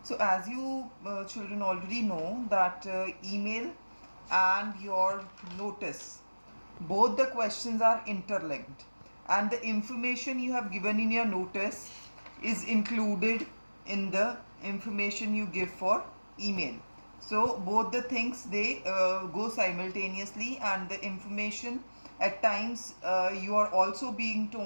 So as you children already know that email and your notice, both the questions are interlinked, and the information you have given in your notice is included in the information you give for email. So both the things, they go simultaneously, and the information at times you are also being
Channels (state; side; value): inverted; both; correlation -1.00